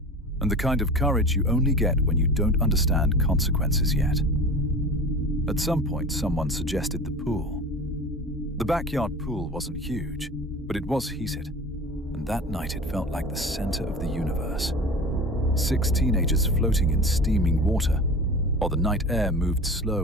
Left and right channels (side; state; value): both; normal; correlation 0.35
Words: and the kind of courage you only get when you don't understand consequences yet. At some point, someone suggested the pool. The backyard pool wasn't huge, but it was heated, and that night it felt like the center of the universe. 6 teenagers floating in steaming water, while the night air moved